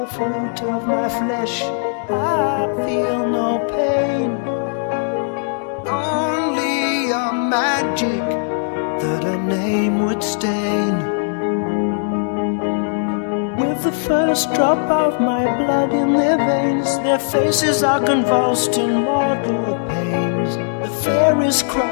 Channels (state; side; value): silent; right; digital silence